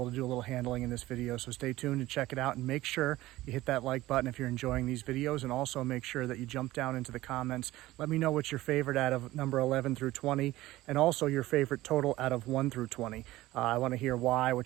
to do a little handling in this video. So stay tuned and check it out, and make sure you hit that like button if you're enjoying these videos, and also make sure that you jump down into the comments. Let me know what's your favorite out of number 11 through 20, and also your favorite total out of 1 through 20. I want to hear why,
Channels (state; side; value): quieter; left; 17.1 dB